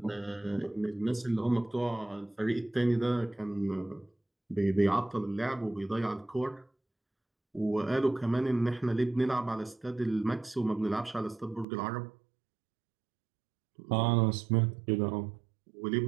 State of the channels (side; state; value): left; drops out; at 11.7 s